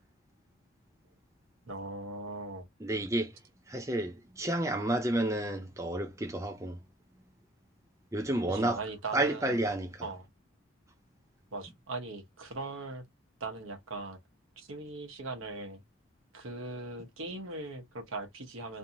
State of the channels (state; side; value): normal; both; correlation 0.48